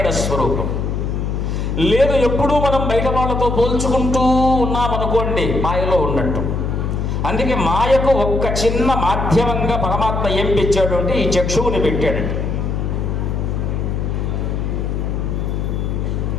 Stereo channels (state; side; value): noise; left; hum, 1 dB below the sound